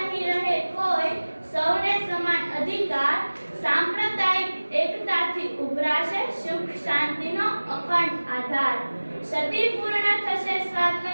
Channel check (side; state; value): both; inverted; correlation -1.00